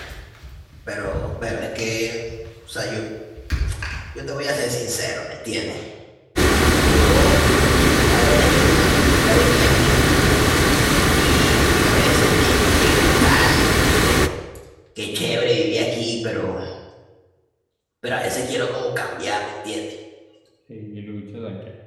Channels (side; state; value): both; identical; correlation 1.00